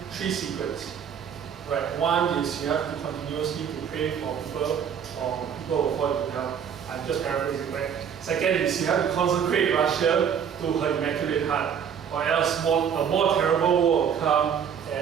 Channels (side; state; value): left; quieter; 7.9 dB